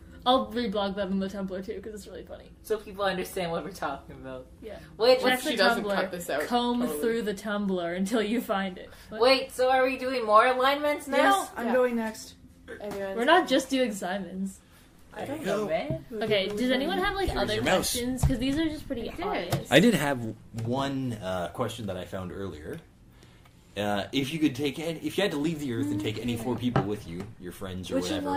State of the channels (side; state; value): both; identical; correlation 1.00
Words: I'll reblog that on the Tumblr too, because it's really funny. So people understand what we're talking about. Yeah. Wait, What Check if she the doesn't Tumblr. cut this out? Comb Totally. through the Tumblr until you find it. What? wait, so are we doing more alignments now? Yes, I'm Yeah. going next. Everyone's We're not just doing Simons. I don't know, man. Okay, does anyone have like Here's other your mouse. questions? Because these are just pretty did. obvious. I did have one question that I found earlier. If you could take, if you had to leave the Earth and take any 4 people with you, your friends or Which whatever,